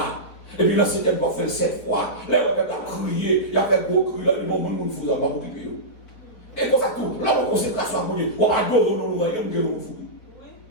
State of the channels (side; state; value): right; late; 4.7 ms